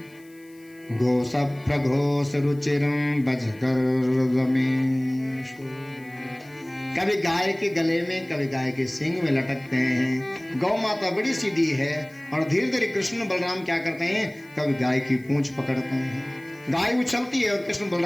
गोसप्रघोष रुचिरं बजकर्दमेषु। कभी गाय के गले में, कभी गाय के सींग में लटकते हैं। गौ माता बड़ी सीधी है, और धीरे धीरे कृष्ण बलराम क्या करते हैं, कभी गाय की पूंछ पकड़ते हैं, गाय उछलती है और कृष्ण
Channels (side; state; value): left; noise; hiss, 28 dB below the sound